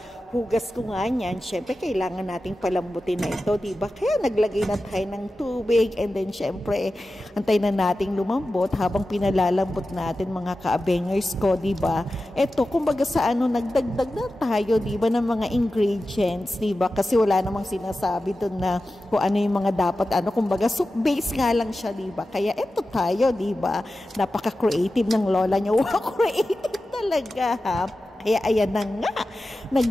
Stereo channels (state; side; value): normal; both; correlation 0.94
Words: hugas ko nga niyan, syempre, kailangan nating palambutin na ito, diba? Kaya naglagay na tayo ng tubig. And then, syempre, antay na nating lumambot habang pinalalambot natin, mga kaabengers ko, diba? Ito, kumbaga sa nagdagdag na tayo, diba, ng mga ingredients, diba? Kasi wala namang sinasabi doon na kung ano yung mga dapat, kumbaga soup base nga lang siya, diba? Kaya ito tayo, diba? Napaka-creative ng lola niyo. Wow, creative talaga, ha? Kaya ayan na nga,